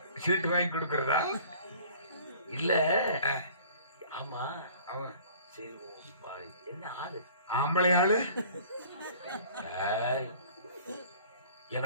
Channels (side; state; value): both; inverted; correlation -0.49